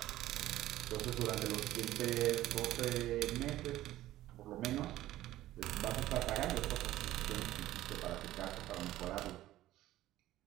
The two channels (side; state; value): left; quieter; 15.0 dB